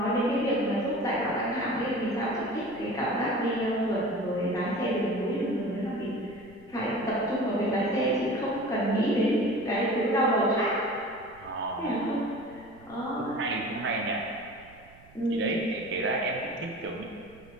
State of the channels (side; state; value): right; noise; rumble, 24 dB below the sound